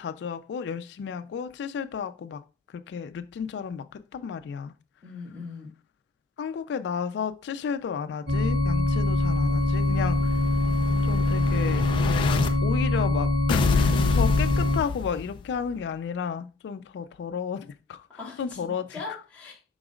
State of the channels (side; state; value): right; quieter; 3.1 dB